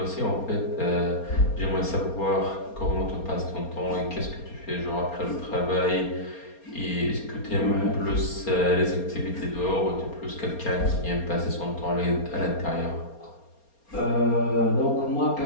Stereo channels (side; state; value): right; late; 4.3 ms